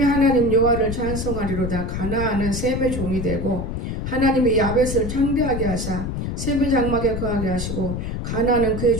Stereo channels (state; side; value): noise; left; rumble, 4 dB below the sound